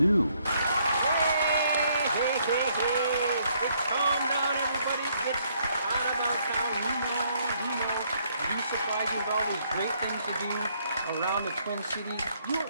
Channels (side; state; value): both; inverted; correlation -0.69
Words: Hey. Calm down, everybody. It's Todd About Town. You know. You surprise you with all these great things to do around the Twin Cities. You